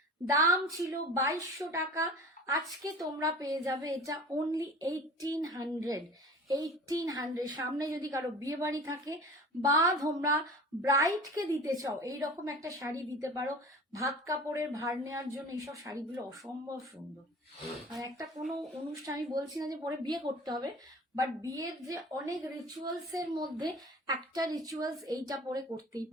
দাম ছিল 2200 টাকা, আজকে তোমরা পেয়ে যাবে এটা অনলি 1800, 1800। সামনে যদি কারো বিয়ে বাড়ি থাকে বা তোমরা ব্রাইডকে দিতে চাও এইরকম একটা শাড়ি দিতে পারো, ভাত কাপড়ের ভার নেওয়ার জন্য এইসব শাড়িগুলো অসম্ভব সুন্দর। আর একটা কোনো অনুষ্ঠান, আমি বলছি না যে পরে বিয়ে করতে হবে, বাট বিয়ের যে অনেক রিচুয়ালস এর মধ্যে একটা রিচুয়ালস এইটা পরে করতেই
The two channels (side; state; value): both; normal; correlation 0.40